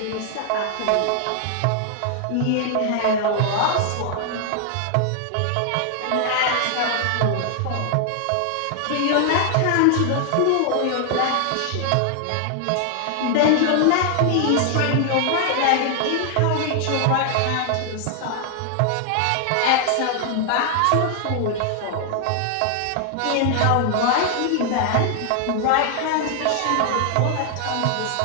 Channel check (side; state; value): both; different; correlation 0.00